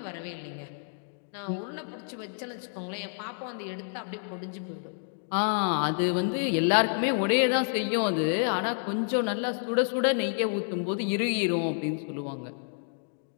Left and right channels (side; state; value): right; silent; digital silence